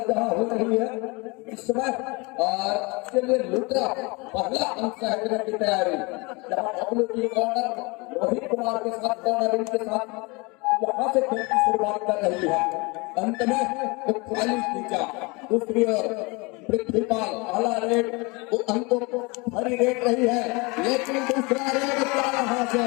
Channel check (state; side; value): quieter; right; 27.1 dB